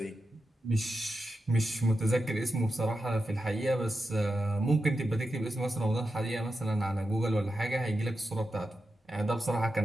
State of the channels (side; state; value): both; normal; correlation 0.89